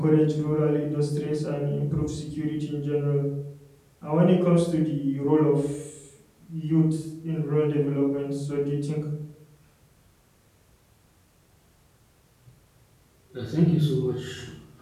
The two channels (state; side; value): identical; both; correlation 1.00